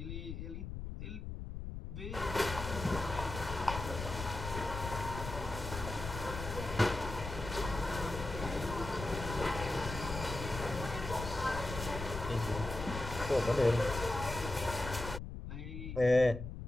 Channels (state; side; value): noise; left; rumble, 7 dB below the sound